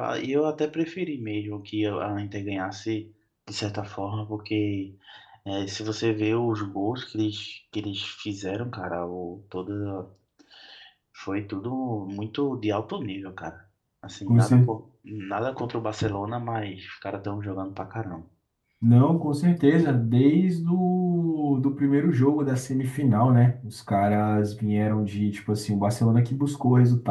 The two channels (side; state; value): both; identical; correlation 1.00